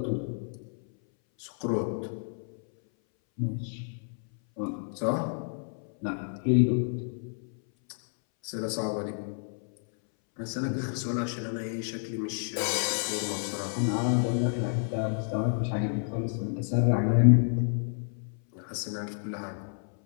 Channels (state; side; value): silent; right; 58 dB below the other